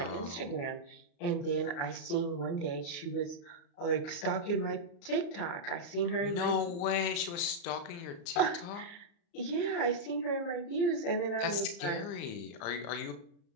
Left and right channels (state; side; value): late; right; 35 ms